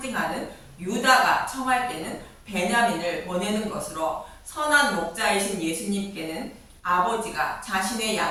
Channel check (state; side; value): identical; both; correlation 1.00